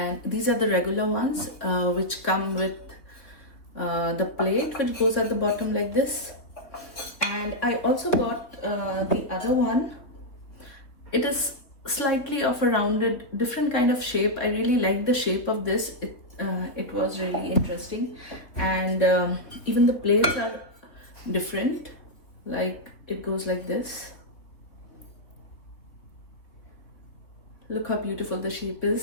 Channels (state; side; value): late; right; 3.4 ms